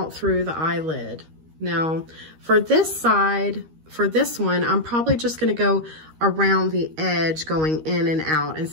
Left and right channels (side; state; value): left; late; 13 ms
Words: through the eyelid. Now, for this side, for this one, I'm probably just going to go around the edge, going in and out